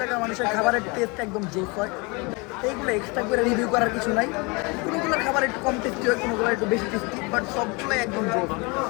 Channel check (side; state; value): right; quieter; 28.4 dB